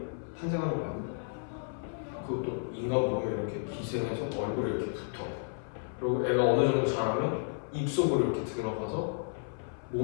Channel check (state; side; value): silent; right; 56 dB below the other